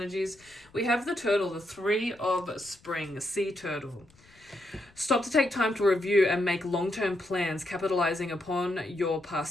We have the turtle, the 3 of spring, sea turtle. Stop to take time to review and make long-term plans, capitalizing upon your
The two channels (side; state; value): left; noise; rumble, 29 dB below the sound